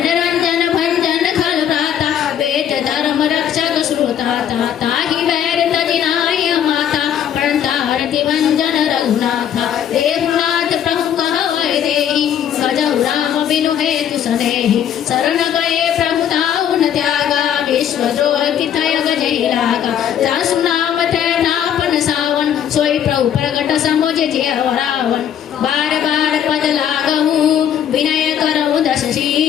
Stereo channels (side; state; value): right; quieter; 9.5 dB